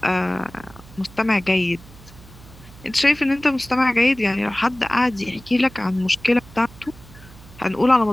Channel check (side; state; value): right; noise; hum, 21 dB below the sound